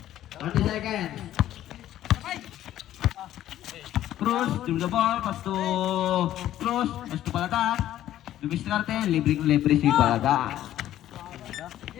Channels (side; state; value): right; quieter; 12.7 dB